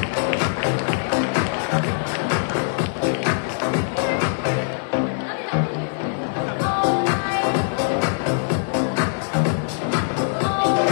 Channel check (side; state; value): right; silent; 57 dB below the other